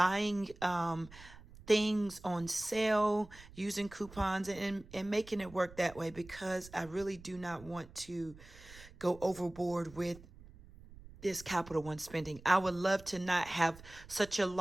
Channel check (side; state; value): right; noise; rumble, 20 dB below the sound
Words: things on sale, using coupons, and making it work that way, because I really do not want to go overboard with this Capital One spending. I would love to not have such a